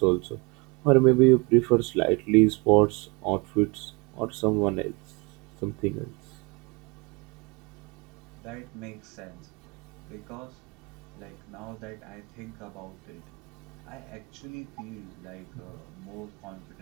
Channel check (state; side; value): quieter; left; 28.1 dB